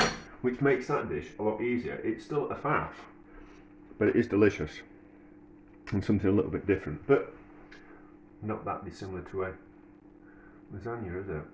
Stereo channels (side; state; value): both; identical; correlation 1.00